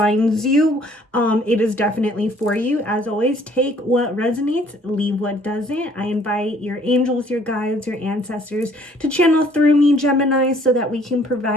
you, it is definitely for you. As always, take what resonates, leave what doesn't. I invite your angels, your guides, your ancestors to channel through me, Gemini, so that we can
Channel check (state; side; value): normal; both; correlation 0.59